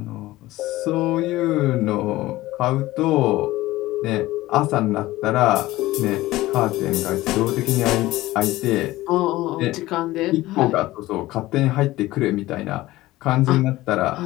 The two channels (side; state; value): right; quieter; 17.5 dB